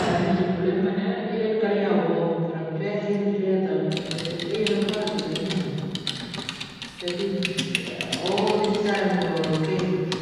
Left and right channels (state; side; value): identical; both; correlation 1.00